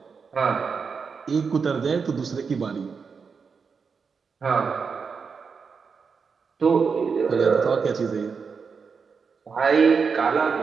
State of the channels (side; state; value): left; quieter; 5.5 dB